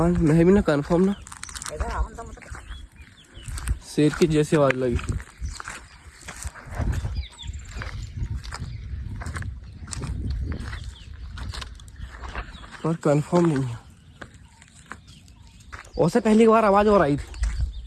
मैं भी ना कंफर्म ना शेर की जैसी आवाज लगी। पर कंफर्म नहीं है। उससे पहली बार आवाज और आई थी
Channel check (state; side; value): identical; both; correlation 1.00